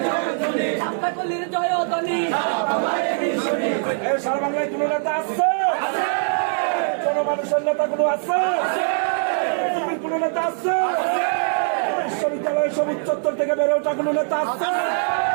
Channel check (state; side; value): silent; left; 64 dB below the other